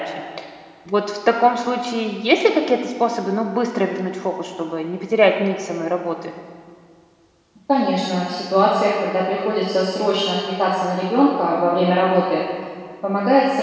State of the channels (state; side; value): identical; both; correlation 1.00